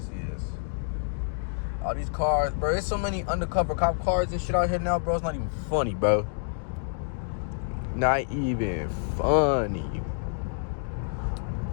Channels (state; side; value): silent; right; digital silence